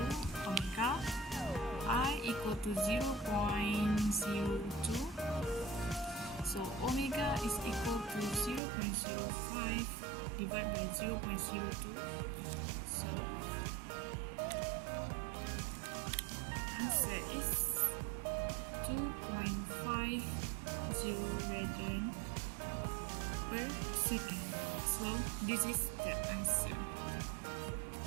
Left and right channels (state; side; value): drops out; left; at 8.6 s